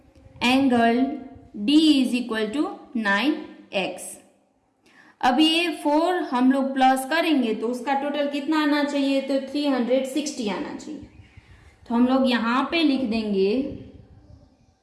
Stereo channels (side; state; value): both; identical; correlation 1.00